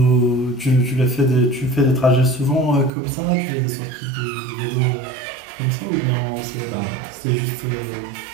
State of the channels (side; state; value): left; drops out; at 2.9 s